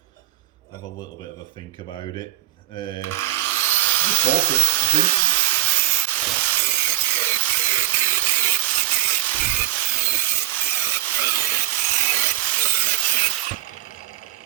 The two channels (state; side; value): quieter; left; 15.4 dB